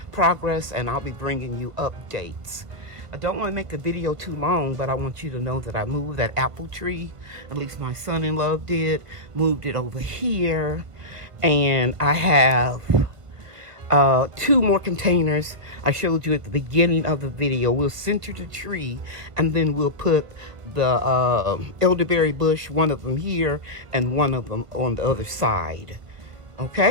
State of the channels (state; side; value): late; left; 1.5 ms